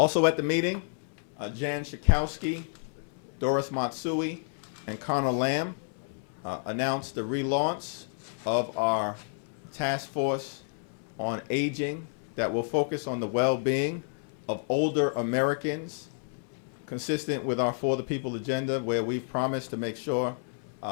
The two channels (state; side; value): silent; right; digital silence